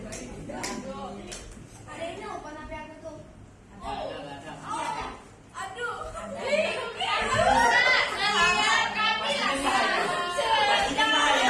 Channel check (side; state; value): both; identical; correlation 1.00